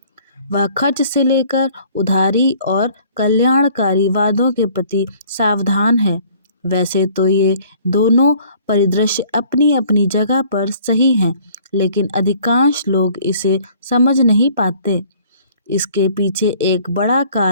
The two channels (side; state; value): both; inverted; correlation -0.55